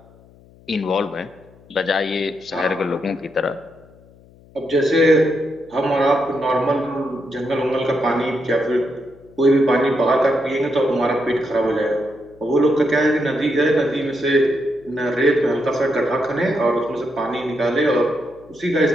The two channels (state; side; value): noise; left; hum, 26 dB below the sound